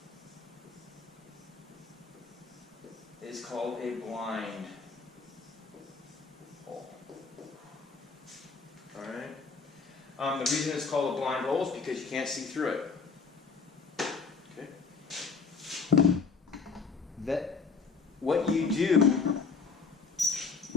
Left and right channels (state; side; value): quieter; right; 4.9 dB